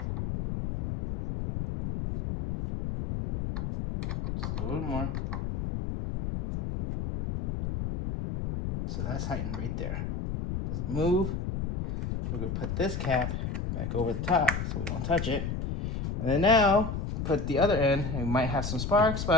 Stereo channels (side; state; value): left; noise; rumble, 3 dB below the sound